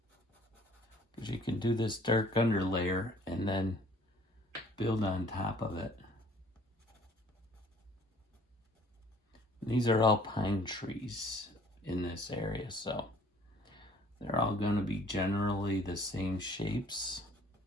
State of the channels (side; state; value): both; normal; correlation 0.56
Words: Because you can do this dark underlayer and then build on top of it. And these are all pine trees in this area, so they're all going to be generally the same shapes.